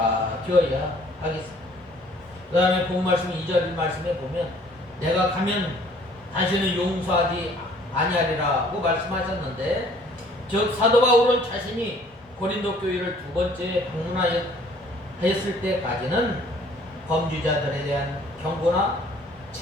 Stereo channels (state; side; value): normal; both; correlation 0.57